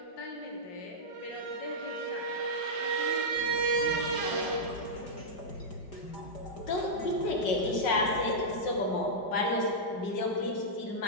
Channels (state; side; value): late; right; 5.4 ms